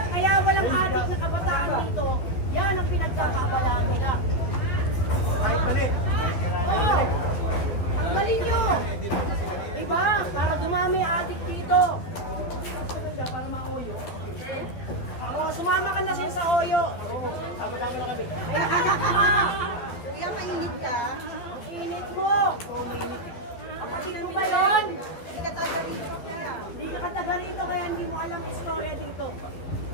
kaya walang adik na kabataan dito. kayo sa Oyo. Oo, sama-sama na kami. Kuya, mainit ka? Ang init mo. Oo, mainit eh. Kapatid mo ba yun? Hindi ka taga rito kaya. Hindi ka taga rito kaya hindi mo alam ang istorya dito.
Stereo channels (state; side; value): late; right; 12 ms